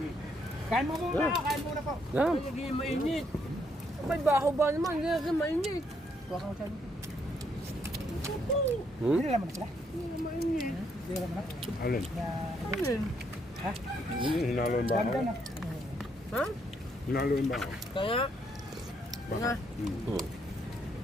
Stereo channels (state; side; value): normal; both; correlation 0.73